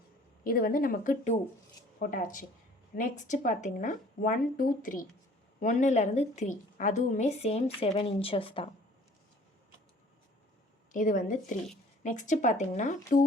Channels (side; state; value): both; normal; correlation 0.53